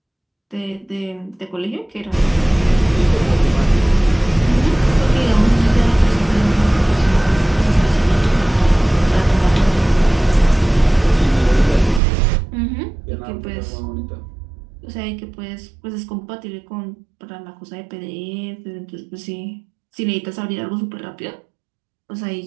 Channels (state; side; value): drops out; left; at 12.0 s